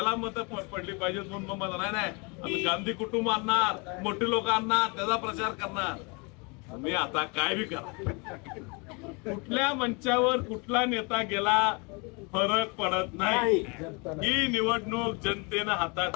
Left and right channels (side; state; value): right; quieter; 30.9 dB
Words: मतं पडली पाहिजेत. म्हणून मग मला नाही आम्ही गांधी कुटुंब आणणार, मोठे लोक आणणार, त्याचा प्रचार करणार. मी आता काय बी करा, कुठल्या मंचावर कुठला नेता गेला फरक पडत नाही. ही निवडणूक जनतेनं हातात